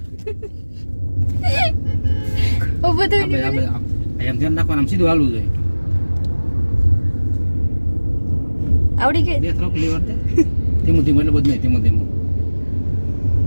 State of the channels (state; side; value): inverted; both; correlation -1.00